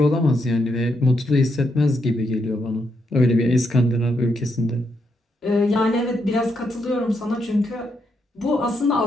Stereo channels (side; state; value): both; normal; correlation 0.79